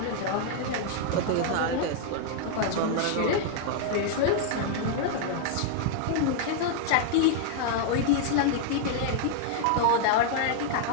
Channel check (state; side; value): different; both; correlation -0.01